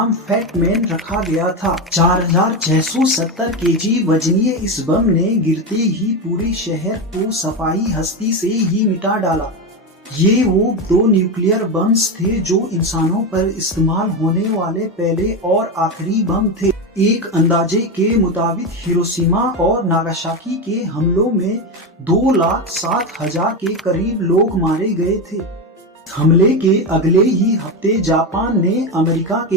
फैट मैन रखा गया था। 4670 केजी वजनीय इस बम ने गिरते ही पूरे शहर को सफाई हस्ती से ही मिटा डाला। ये वो 2 न्यूक्लियर बम्स थे जो इंसानों पर इस्तेमाल होने वाले पहले और आखिरी बम थे। एक अंदाजे के मुताबिक हिरोशिमा और नागासाकी के हमलों में 2,07,000 के करीब लोग मारे गए थे। हमले के अगले ही हफ्ते जापान ने अमेरिका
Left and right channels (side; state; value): both; normal; correlation 0.15